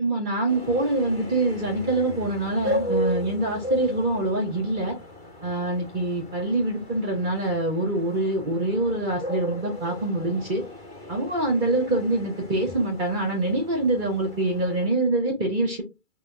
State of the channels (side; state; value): left; late; 2.3 ms